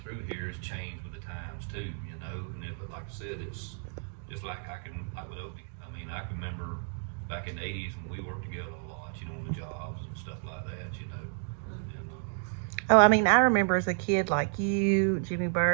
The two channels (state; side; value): silent; left; 57 dB below the other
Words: through here has changed with the times too. You know, but like I said, it's just like with Opie. I mean, I can remember back in the '80s when we worked together a lot. You know, on the jobs and stuff like that. You know. Oh, I mean, I remember as a kid, like you, Jimmy